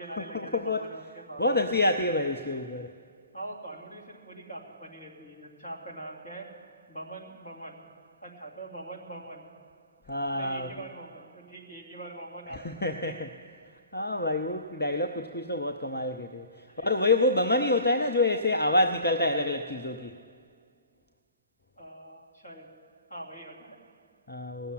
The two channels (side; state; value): both; inverted; correlation -0.48